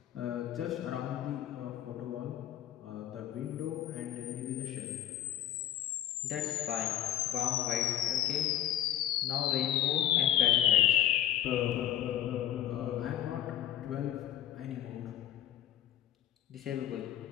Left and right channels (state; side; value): quieter; right; 11.8 dB